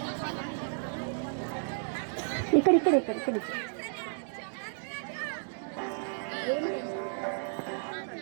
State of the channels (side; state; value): left; silent; digital silence